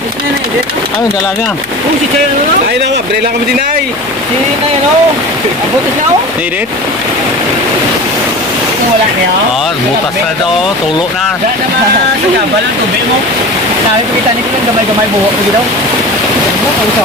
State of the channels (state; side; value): noise; left; hum, 26 dB below the sound